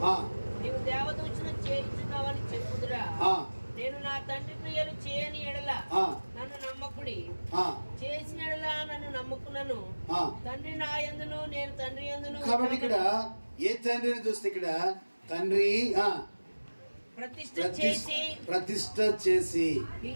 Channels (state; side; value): inverted; both; correlation -1.00